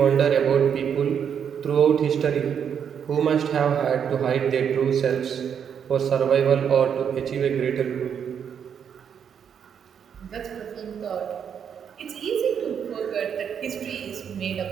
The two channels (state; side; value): quieter; left; 7.8 dB